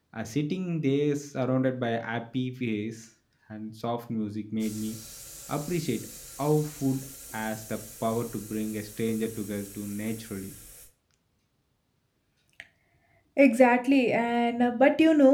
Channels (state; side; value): identical; both; correlation 1.00